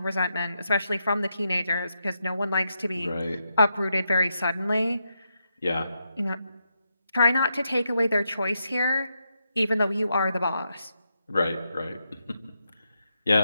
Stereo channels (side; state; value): both; inverted; correlation -0.84